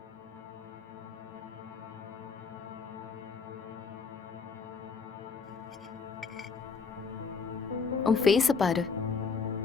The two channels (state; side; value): quieter; right; 5.1 dB